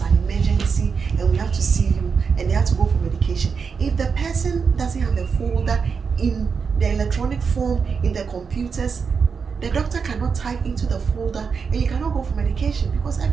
emergency and we have to see you and they have to go for medication, if the person doesn't have a folder in the electronic form in the computers, the doctor cannot type into the folder and you cannot go for medication because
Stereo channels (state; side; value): quieter; left; 5.7 dB